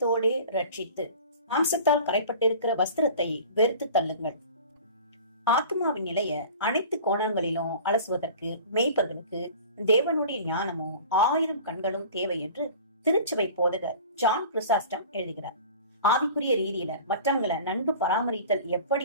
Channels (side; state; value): both; inverted; correlation -0.42